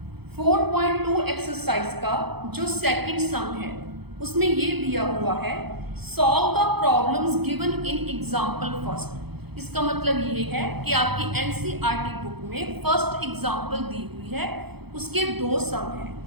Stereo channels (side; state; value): left; late; 0.97 ms